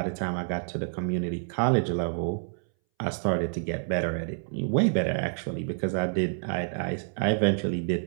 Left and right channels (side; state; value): left; silent; 59 dB below the other